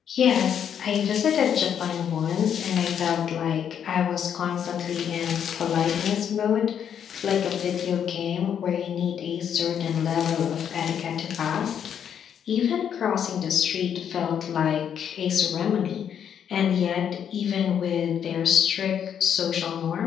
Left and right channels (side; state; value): right; quieter; 8.6 dB